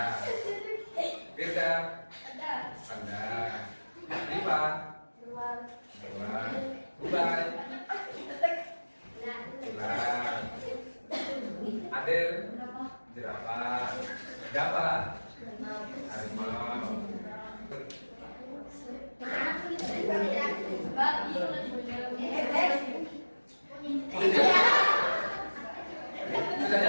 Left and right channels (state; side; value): inverted; both; correlation -1.00